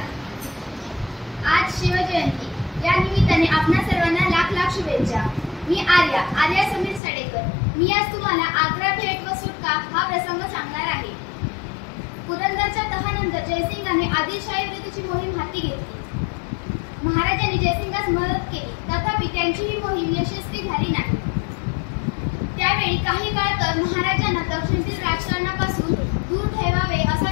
आज शिवजयंती या निमित्ताने आपणा सर्वांना लाख लाख शुभेच्छा। मी आर्या समीर साडेकर। मी आज तुम्हाला आग्रा भेट व सुटका हा प्रसंग सांगणार आहे। पुरंदरच्या तहानंतर जयसिंगाने आदिलशाही विरुद्धची मोहीम हाती घेतली। महाराजांनी जयसिंगास मदत केली, तथापि त्यांची ही मोहीम यशस्वी झाली नाही। त्यावेळी काही काळ तर महाराजांना दक्षिणेतील राजकारणापासून दूर ठेवावे असा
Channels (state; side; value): drops out; right; at 7.0 s